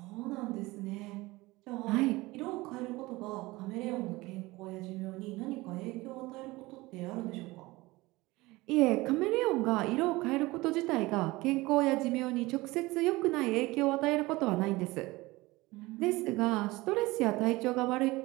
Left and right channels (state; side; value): quieter; left; 20.8 dB